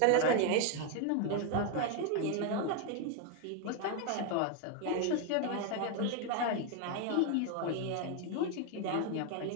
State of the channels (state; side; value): different; both; correlation 0.01